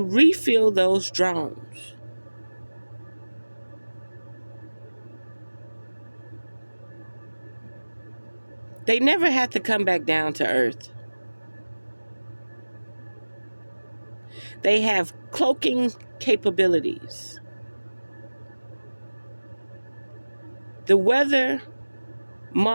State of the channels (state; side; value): inverted; both; correlation -1.00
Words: refill those drones. They never had to come back down to Earth. They have cloaking capabilities. The weather